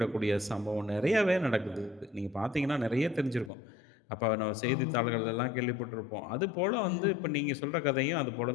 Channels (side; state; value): right; drops out; at 3.5 s